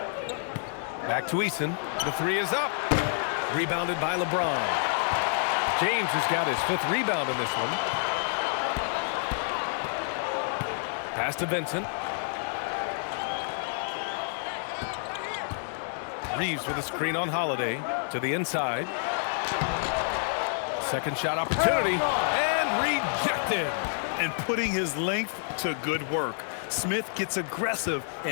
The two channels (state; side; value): silent; right; digital silence